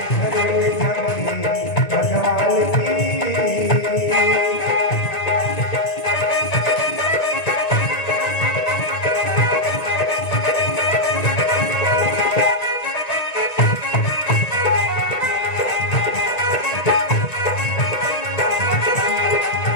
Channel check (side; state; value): right; late; 1.9 ms